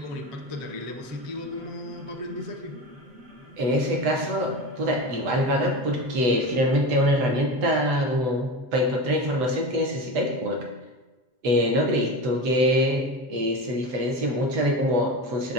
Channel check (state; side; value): late; left; 8.0 ms